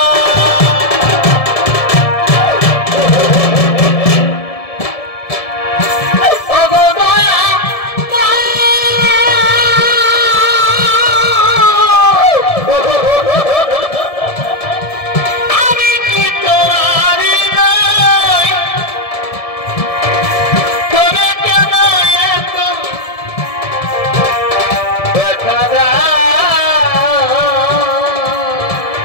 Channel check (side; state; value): right; late; 1.7 ms